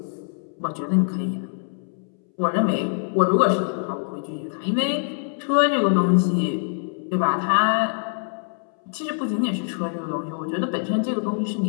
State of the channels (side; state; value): right; silent; 63 dB below the other